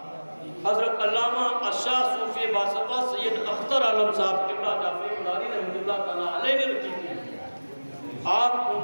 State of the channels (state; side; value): inverted; both; correlation -1.00